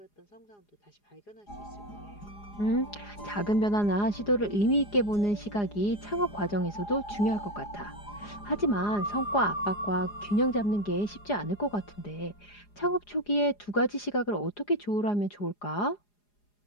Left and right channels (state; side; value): late; right; 4.9 ms